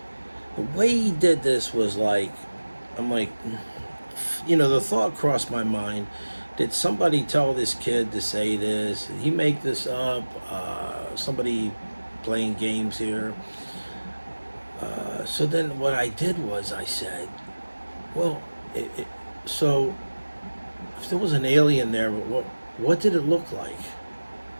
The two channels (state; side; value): inverted; both; correlation -1.00